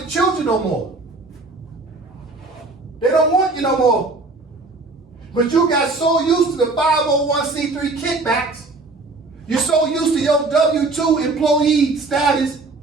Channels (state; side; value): quieter; left; 3.5 dB